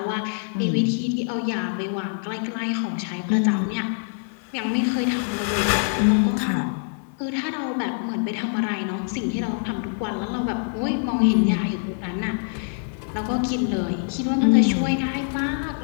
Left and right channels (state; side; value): silent; right; 60 dB below the other